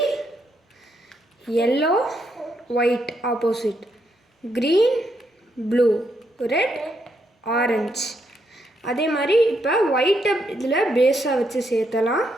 yellow white opposite, green blue, red orange. அதே மாதிரி இப்போ ஒயிட்டை இதில் பேஸாக வச்சு சேர்த்தலாம்.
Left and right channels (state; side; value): normal; both; correlation 0.77